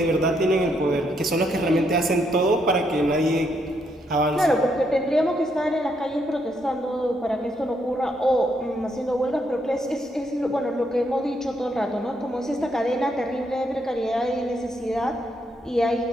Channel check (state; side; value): normal; both; correlation 0.76